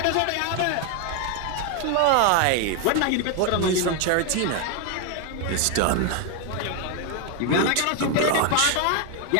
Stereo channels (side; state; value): both; different; correlation 0.01